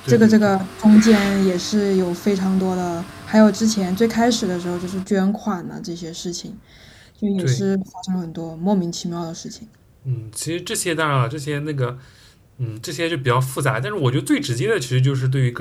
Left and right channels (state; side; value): identical; both; correlation 1.00